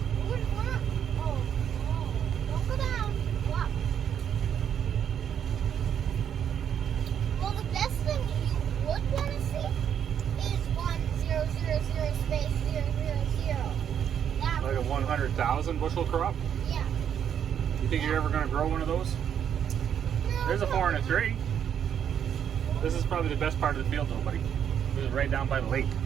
Don't go down. Go up. Well, the best thing you would want to see is 1000 space 000. That Like a would be 100,000 bushel crop. Yeah. You think you're ever going to grow one of those? No, There's a no, 4 and a no. 3. This is probably the best part of the field, though, buddy. This is right down by the lake.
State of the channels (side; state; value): left; quieter; 8.8 dB